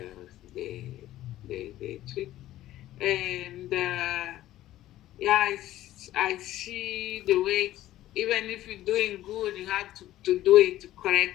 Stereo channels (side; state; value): right; quieter; 14.3 dB